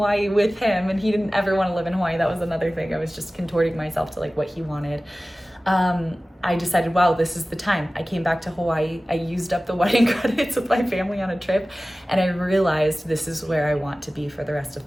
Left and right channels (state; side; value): normal; both; correlation 0.97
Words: with him, and he didn't ever want to live in Hawaii, that was another thing. I was just contorting myself to like what he wanted. I decided, wow, this is the time. I came back to Hawaii. I used up the wedding credits with my family on a trip, and I realized this is where I want to be for the rest of